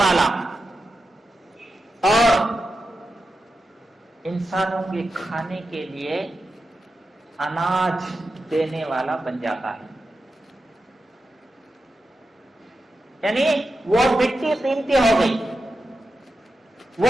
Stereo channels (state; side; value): normal; both; correlation 0.90